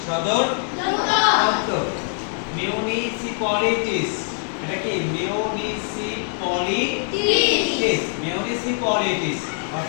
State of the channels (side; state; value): right; silent; 57 dB below the other